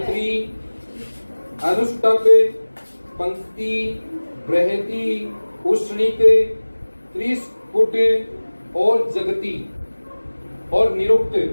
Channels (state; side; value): inverted; both; correlation -1.00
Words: अनुष्टक, पंक्ति, बृहति, उष्णिक, त्रिस्फुट और जगती। और निरुक्त,